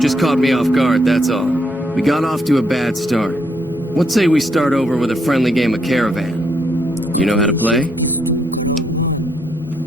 caught me off guard, that's all. We got off to a bad start. What say we start over with a friendly game of Caravan? You know how to play?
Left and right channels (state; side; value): normal; both; correlation 0.75